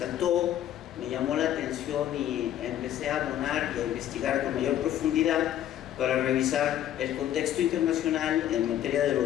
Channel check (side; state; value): right; quieter; 11.5 dB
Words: me llamó la atención y empecé a abonar y a investigar con mayor profundidad para revisar el contexto internacional en materia de